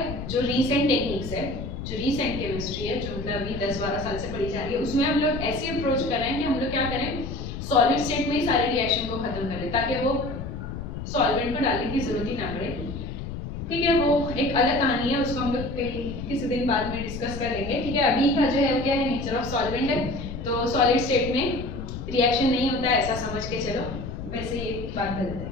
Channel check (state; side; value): noise; left; rumble, 7 dB below the sound